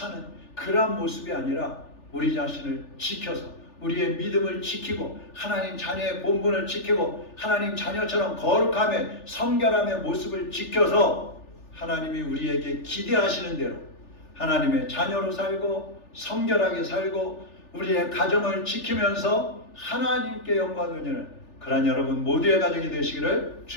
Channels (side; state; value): right; late; 3.4 ms